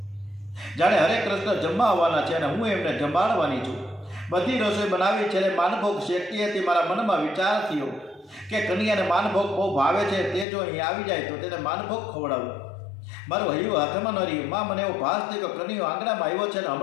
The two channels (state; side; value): drops out; right; at 10.5 s